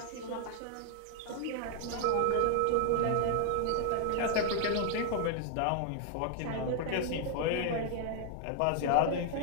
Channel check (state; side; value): different; both; correlation 0.00